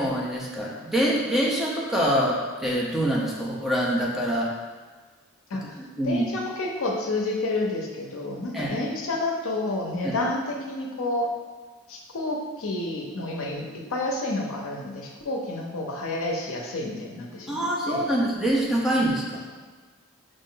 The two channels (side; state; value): both; normal; correlation 0.43